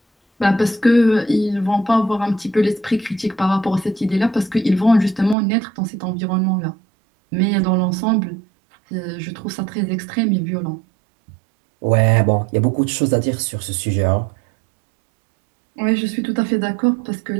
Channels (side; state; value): left; drops out; at 5.4 s